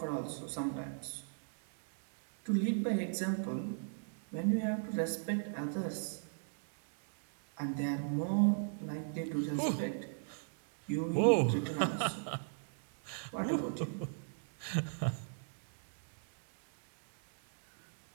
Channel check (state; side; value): silent; left; digital silence